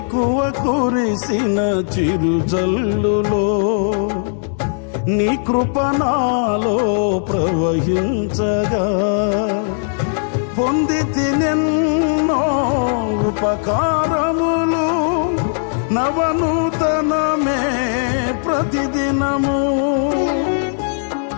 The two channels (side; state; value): right; silent; digital silence